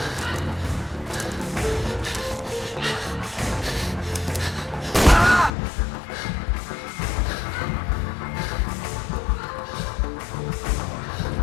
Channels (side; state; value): right; drops out; at 5.5 s